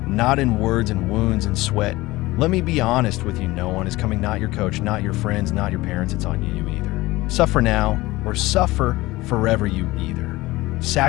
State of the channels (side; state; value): right; quieter; 19.5 dB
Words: not in words and wounds and sweat. Let me be honest with you, no one is coming, not your coach, not your friends, not your parents, it's on you either. Suffer now or suffer forever, you either.